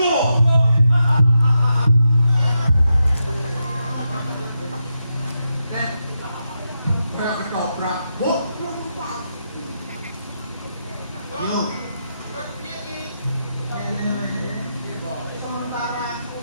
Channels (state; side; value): inverted; both; correlation -0.86